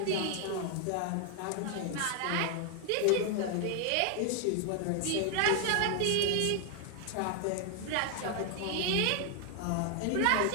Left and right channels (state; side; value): different; both; correlation 0.00